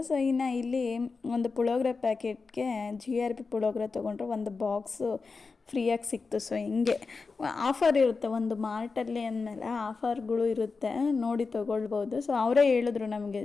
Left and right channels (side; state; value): right; quieter; 4.4 dB